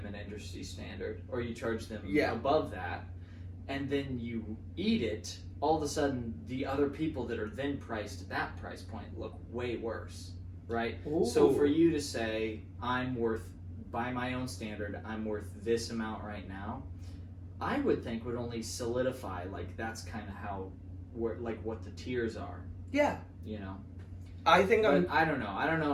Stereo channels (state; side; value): identical; both; correlation 1.00